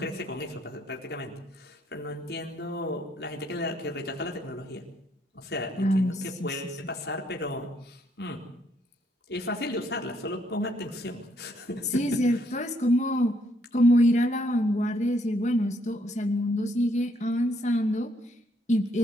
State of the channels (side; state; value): both; normal; correlation 0.71